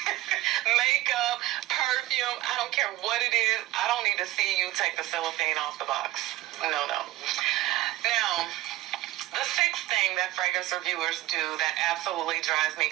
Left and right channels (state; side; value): quieter; left; 16.7 dB